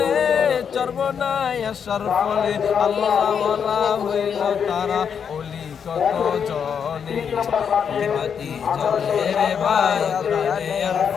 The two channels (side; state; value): right; quieter; 7.2 dB